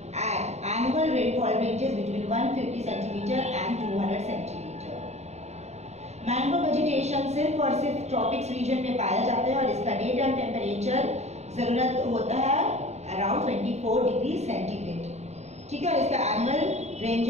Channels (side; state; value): left; late; 0.32 ms